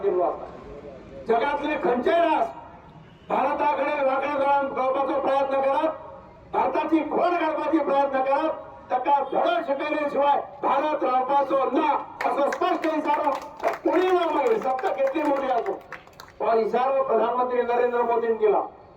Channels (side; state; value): both; identical; correlation 1.00